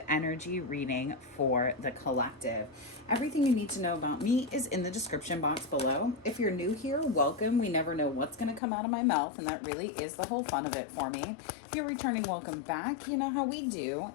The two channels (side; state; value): right; drops out; at 8.6 s